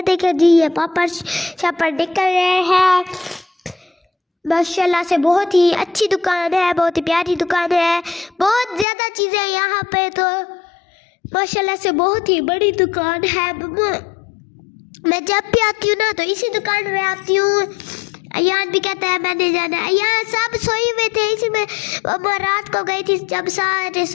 देखिए जी, ये पापड़ शापड़ निकल रहे हैं। माशाल्लाह से बहुत ही अच्छी दुकान है, बहुत ही प्यारी दुकान है, बहुत ज़्यादा चीज़ें यहाँ पे। तो माशाल्लाह से बहुत ही बड़ी दुकान है। मैं जब भी आती हूँ ना तो इसी दुकान में आती हूँ। अयान भी कहता है मैंने जाना है। यहाँ सब सोए हुए थे, इसी में मम्मा रात को गई थी जब सारे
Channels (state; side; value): drops out; right; at 8.8 s